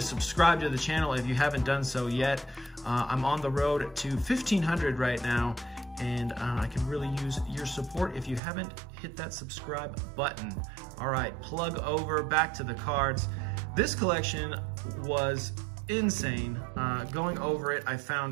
to the channel if you haven't done so yet. I'm on the road to 1,500 right now, and I can really use your support if you haven't hit that subscribe button. All right, plug over, back to the cards. This collection was insane. Going over it, I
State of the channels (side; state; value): left; drops out; at 8.4 s